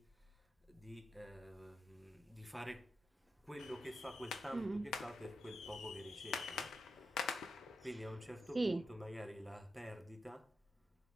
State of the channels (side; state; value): both; normal; correlation 0.87